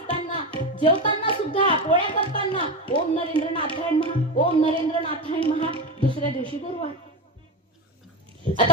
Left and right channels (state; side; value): normal; both; correlation 0.19